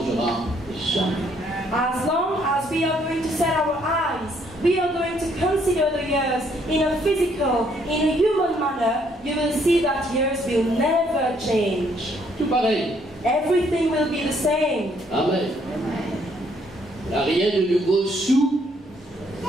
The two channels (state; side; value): normal; both; correlation 0.68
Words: jamais. As long as we are going to set our eyes, we are going to consider the years in a physical, in a human manner, you will see that years will never change. Tout pareil. Everything will be the same. Amen. Il n'y a rien de nouveau sous